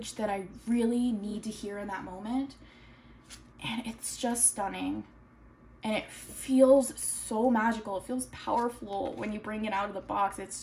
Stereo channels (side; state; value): both; identical; correlation 1.00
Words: that I really need to hear in that moment. And it's just stunning. And it feels so magical. It feels powerful when you bring it out of the box. It's